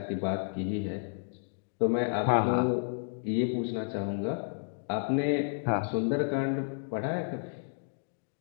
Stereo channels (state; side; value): silent; right; digital silence